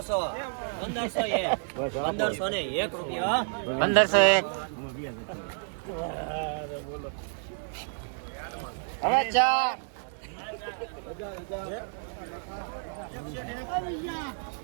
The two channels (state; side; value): silent; left; digital silence